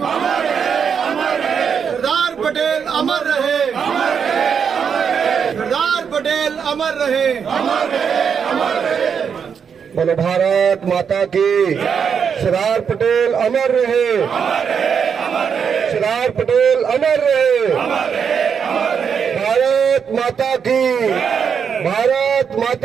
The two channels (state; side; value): quieter; left; 6.9 dB